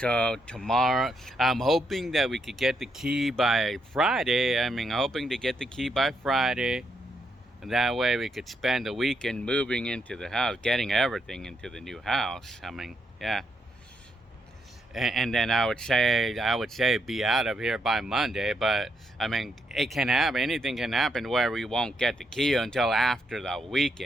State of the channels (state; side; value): normal; both; correlation 0.79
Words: tomorrow, I'm hoping that we could get the key by Friday. I mean, hoping to get the key by Friday. And that way we could spend the weekend moving into the house, getting everything into the new house. I mean, yeah. And then I would say be out of here by Monday, but I mean, it can happen, anything can happen where we won't get the key until after the